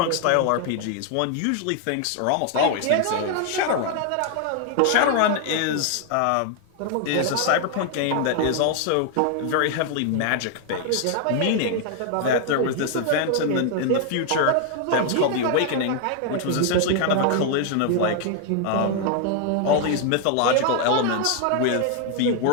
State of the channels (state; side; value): different; both; correlation 0.00